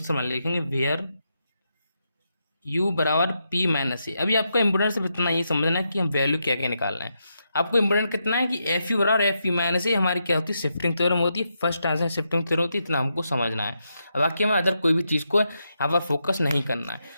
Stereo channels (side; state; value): both; inverted; correlation -0.83